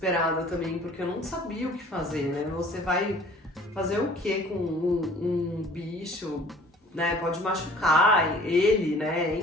também, porque eu não sabia o que fazer, né? Você vai fazer o que com um bicho, né? Pode machucar ele, né?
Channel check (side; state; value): both; normal; correlation 0.51